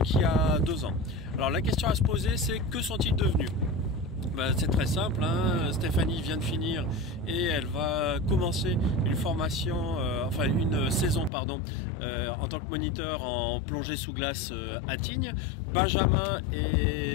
il y a 2 ans. Alors la question à se poser, c'est que sont-ils devenus? C'est très simple, hein. Stéphanie vient de finir et elle va commencer une formation, une saison en tant que moniteur en plongée sous glace à Tignes. Benjamin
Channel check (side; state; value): right; drops out; at 11.3 s